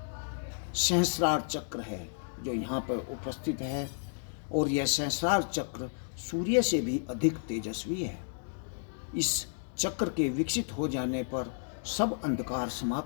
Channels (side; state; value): right; silent; digital silence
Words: सहस्रार चक्र है, जो यहाँ पर उपस्थित है, और यह सहस्रार चक्र सूर्य से भी अधिक तेजस्वी है। इस चक्र के विकसित हो जाने पर सब अंधकार